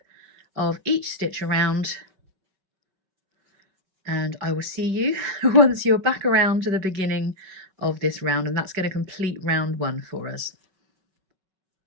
of each stitch around, and I will see you once you're back around to the beginning of this round, and that's going to complete round 1 for us.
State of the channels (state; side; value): late; left; 5.1 ms